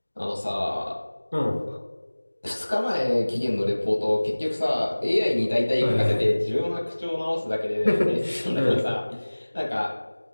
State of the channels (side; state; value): both; inverted; correlation -1.00